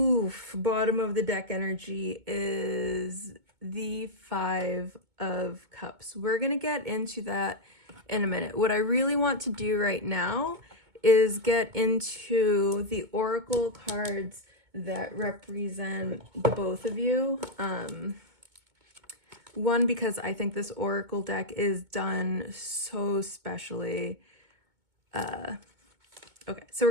bottom of the deck energy is the Five of Cups. We're gonna get into that in a minute. What I really want to do right now is get into the oracle cards that represent the both of you. One, because I think this oracle deck is done so specially. Okay, so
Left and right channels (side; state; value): left; late; 2.2 ms